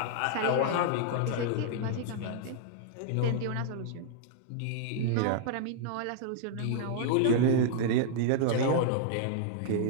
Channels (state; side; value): different; both; correlation -0.01